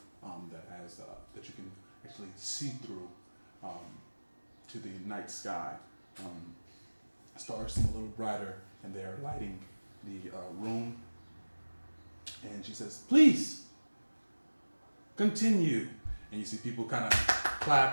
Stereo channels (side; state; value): both; inverted; correlation -1.00